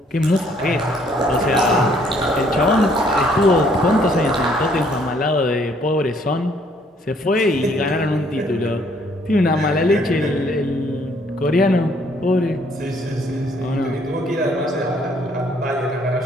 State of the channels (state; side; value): normal; both; correlation 0.64